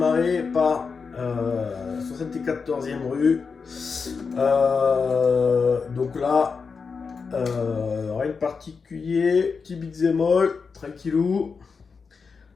par 74e rue. Donc là, rien de particulier. Petit beat'em all, tranquillou.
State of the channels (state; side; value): quieter; right; 5.2 dB